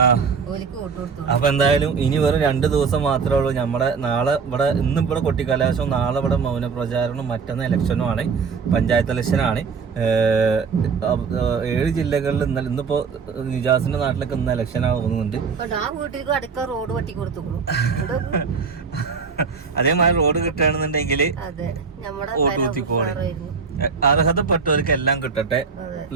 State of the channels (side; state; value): left; quieter; 5.4 dB